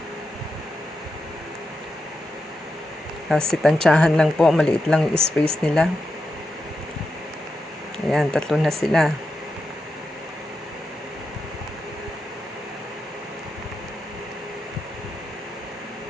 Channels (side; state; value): both; normal; correlation 0.87